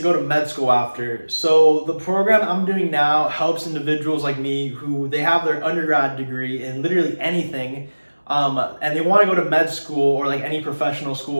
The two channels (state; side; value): inverted; both; correlation -1.00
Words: go to med school after. So the program I'm doing now helps individuals like me who they have their undergrad degree in literally anything, and they want to go to med school or like any professional